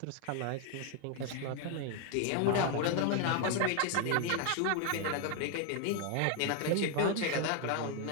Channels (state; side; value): different; both; correlation 0.01